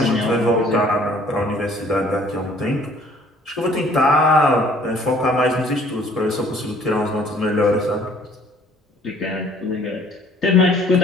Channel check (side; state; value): both; normal; correlation 0.57